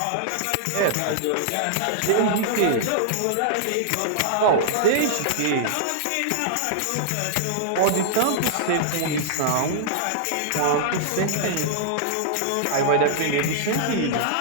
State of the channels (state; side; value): different; both; correlation -0.01